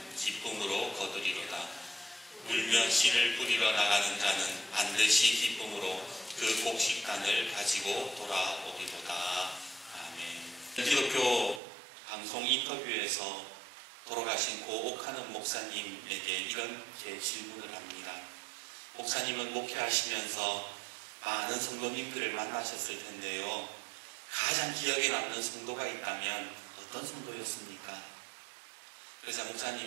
기쁨으로 거두리로다. 울며 씨를 뿌리러 나가는 자는 반드시 기쁨으로 그 곡식단을 가지고 돌아오리로다. 아멘. 기독교 방송 인터뷰에서 돌아가신 고 옥하는 목사님에게 이렇게 질문을 합니다. 목사님은 목회하시면서 많은 성도님들을 만나셨을 텐데요. 가장 기억에 남는 성도가 있다면 어떤 성도였습니까? 그래서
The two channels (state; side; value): drops out; left; at 11.6 s